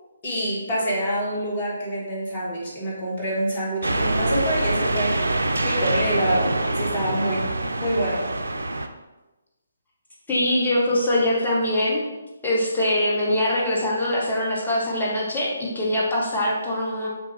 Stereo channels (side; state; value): both; inverted; correlation -0.75